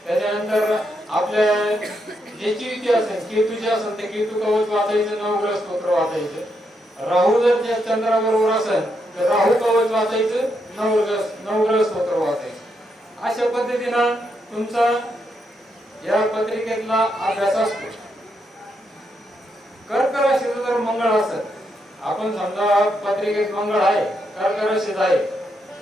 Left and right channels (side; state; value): both; normal; correlation 0.80